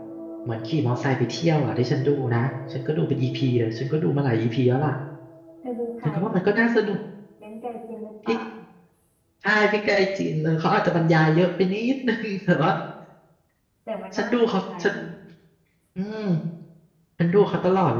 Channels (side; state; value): both; identical; correlation 1.00